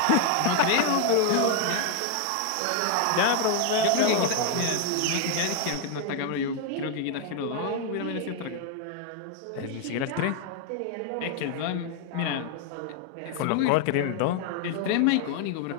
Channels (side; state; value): both; different; correlation 0.00